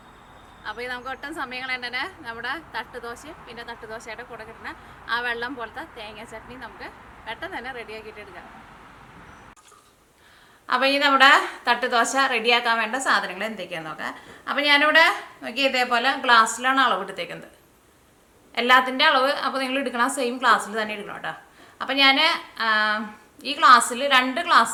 അപ്പോൾ നമുക്ക് ഒട്ടും സമയം കളയണ്ടേ, നമ്മുടെ തട്ടുദോശയും പിന്നെ തട്ടുദോശയുടെ കൂടെ കിട്ടുന്ന ആ വെള്ളം പോലത്തെ തേങ്ങ ചട്നി നമുക്ക് പെട്ടെന്ന് തന്നെ റെഡിയാക്കിയിട്ട് എടുക്കാം. അപ്പോൾ ഈ നമ്മുടെ തട്ടുദോശ റെഡിയാക്കാൻ വേണ്ട സാധനങ്ങൾ എന്തൊക്കെയാണെന്ന് നോക്കാം. അപ്പോൾ ഞാനിവിടെ നോക്കി ഇതേപോലെ ഗ്ലാസ്സിലാണ് അളവ് എടുത്തേക്കുന്നത്, എല്ലാത്തിൻ്റെ അളവ്. അപ്പോൾ നിങ്ങൾ എടുക്കണം സെയിം ഗ്ലാസ്സിൽ തന്നെ എടുക്കണം കേട്ടോ. അപ്പോൾ ഞാൻ ഈ ഗ്ലാസ്സിൽ 2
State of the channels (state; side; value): identical; both; correlation 1.00